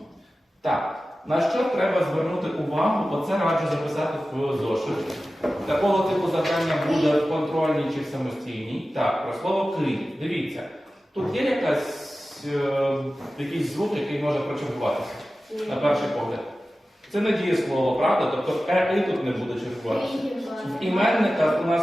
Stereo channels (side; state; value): both; normal; correlation 0.95